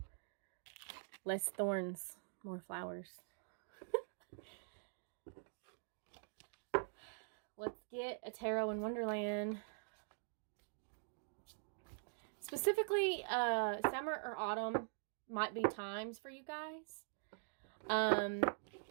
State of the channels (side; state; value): left; silent; digital silence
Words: Less thorns, more flowers. Let's get a tarot in Wonderland. Specifically, summer or autumn might be times for you guys.